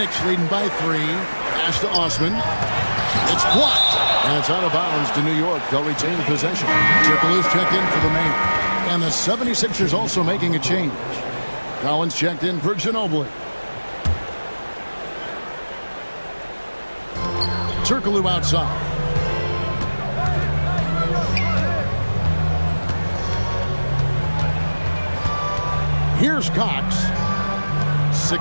leading by 3. Pass to Osman. It's blocked. And it's out of bounds to New York. They'll retain possession. Turkoglu's checked in for the Mayor. And the 76ers also making a change. Collins checked in for Ginobili. Turkoglu outside. Here's Cox.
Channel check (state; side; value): inverted; both; correlation -1.00